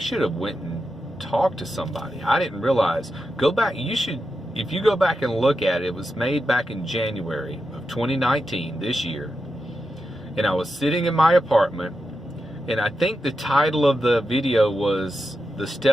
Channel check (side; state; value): both; normal; correlation 0.89